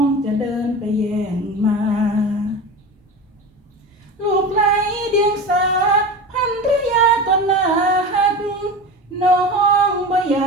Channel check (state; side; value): normal; both; correlation 0.29